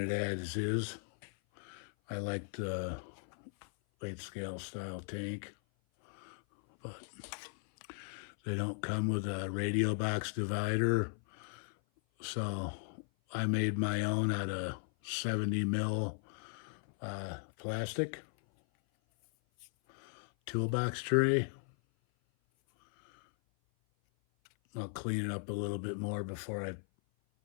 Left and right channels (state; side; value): silent; right; 53 dB below the other